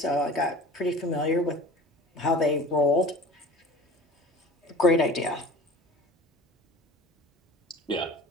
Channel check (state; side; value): normal; both; correlation 0.40